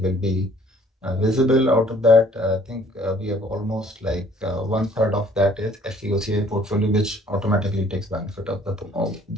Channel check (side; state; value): both; normal; correlation 0.58